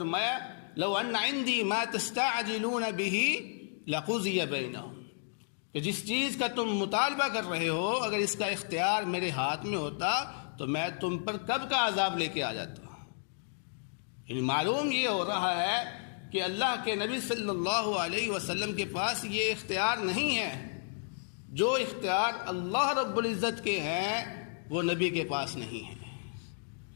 لو ان عندي ما تستعجلون به لقضي بينهم، کہ جس چیز کا تم مطالبہ کر رہے ہو اگر اس کا اختیار میرے ہاتھ میں ہوتا تو میں تم پر کب کا عذاب لے کے آ جاتا۔ یعنی معلوم یہ ہو رہا ہے کہ اللہ کے نبی صلی اللہ علیہ وسلم کے پاس یہ اختیار نہیں ہے، جو اختیار اللہ رب العزت کے ہیں وہ نبی کے پاس نہیں ہے۔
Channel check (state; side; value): silent; right; digital silence